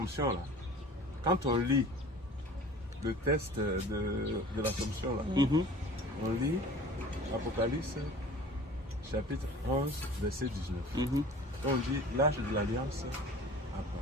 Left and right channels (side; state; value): both; normal; correlation 0.44